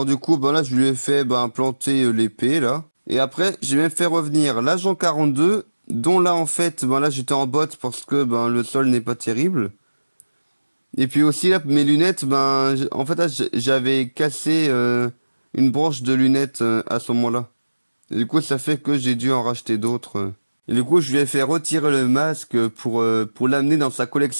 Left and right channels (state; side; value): inverted; both; correlation -1.00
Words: du coup, bah là, je lui ai fait planter l'épée, là. Et après, j'ai même fait revenir l'agent 42, dont là, en fait, là, j'étais en botte parce que le sol n'est pas terrible. Et puis aussi là, mes lunettes, en fait là, j'avais cassé une branche de lunettes à ce moment-là. Et du coup, ça fait que j'ai dû en racheter d'autres. Et du coup, je lui ai fait retirer le masque pour l'amener dans sa